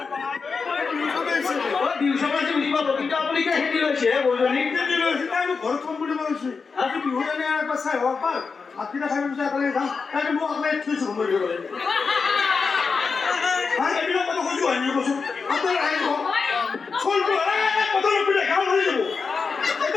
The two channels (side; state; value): right; quieter; 5.0 dB